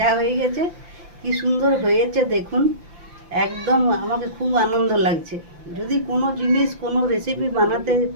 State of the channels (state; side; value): late; left; 5.8 ms